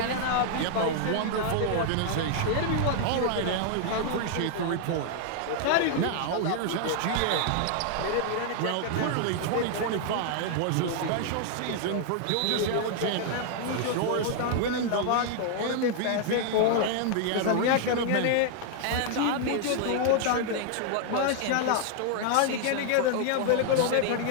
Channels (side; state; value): both; different; correlation 0.00